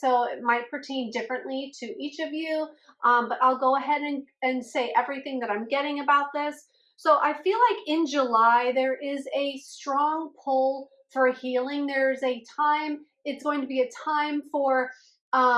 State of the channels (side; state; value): both; identical; correlation 1.00